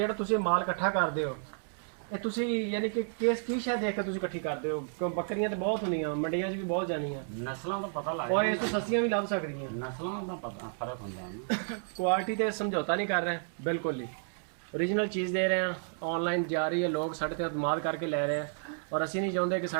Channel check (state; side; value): silent; left; digital silence